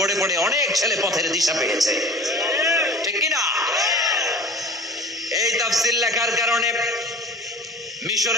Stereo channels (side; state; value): both; normal; correlation 0.40